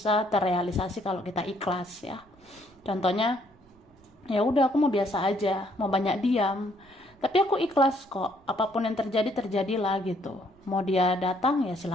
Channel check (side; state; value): right; noise; rumble, 30 dB below the sound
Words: terrealisasi kalau kita ikhlas ya. Contohnya, ya udah aku mau biasa aja, mau banyak diam, tapi aku ikhlas kok. Apapun yang terjadi terjadilah gitu. Mau dia datang ya